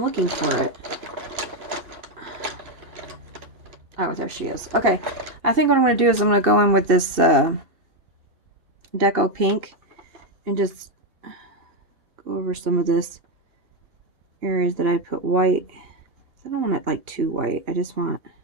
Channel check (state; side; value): late; left; 2.7 ms